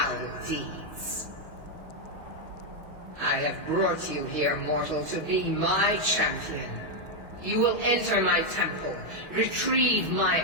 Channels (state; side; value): late; left; 6.2 ms